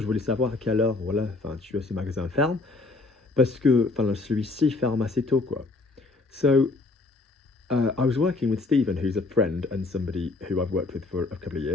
voulais savoir à quelle heure voilà, enfin tu as ce magasin ferme parce que enfin celui-ci ferme assez tôt quoi. So I was working with Stephen, who's a friend and somebody who I've worked with for a couple of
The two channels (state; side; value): quieter; right; 3.5 dB